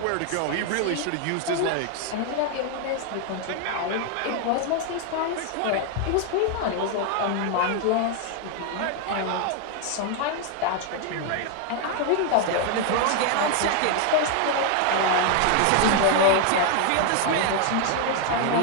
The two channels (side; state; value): both; different; correlation 0.00